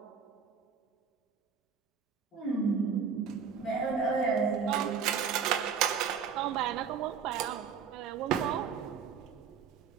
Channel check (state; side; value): quieter; left; 6.6 dB